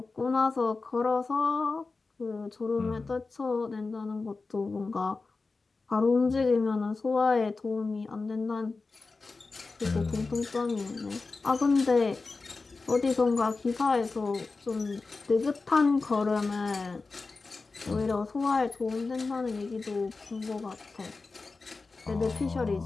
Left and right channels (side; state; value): right; quieter; 3.9 dB